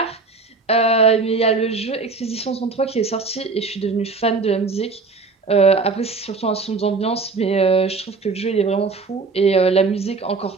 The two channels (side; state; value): left; quieter; 4.2 dB